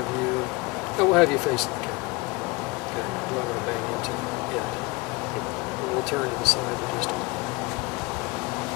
you, we'll have you face the camera. Okay, do I want to bang into it? Yeah. We'll turn to the side of just a moment.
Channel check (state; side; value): quieter; right; 24.8 dB